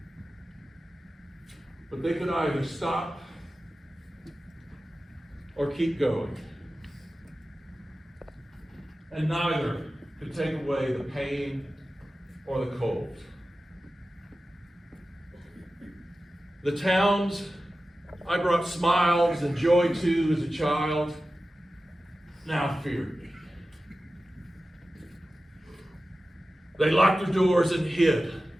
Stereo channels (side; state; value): both; normal; correlation 0.94